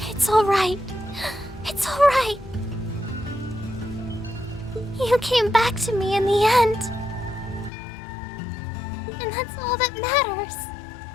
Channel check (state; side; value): drops out; right; at 7.7 s